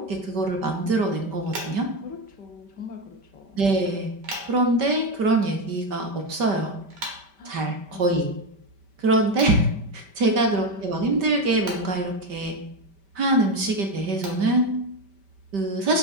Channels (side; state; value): left; late; 5.1 ms